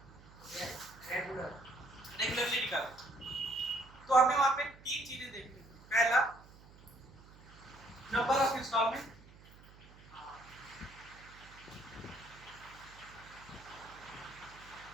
रेगुलरली निकाले, तो हमें वहां पे 3 चीजें देखनी है। पहला, नंबर ऑफ इंस्टॉलमेंट,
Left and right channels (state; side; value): noise; right; hum, 22 dB below the sound